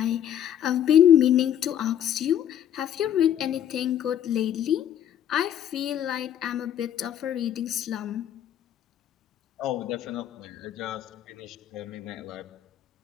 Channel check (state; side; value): quieter; right; 10.2 dB